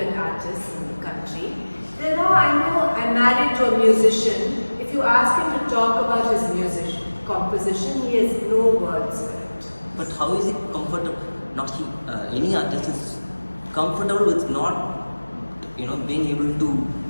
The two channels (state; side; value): inverted; both; correlation -1.00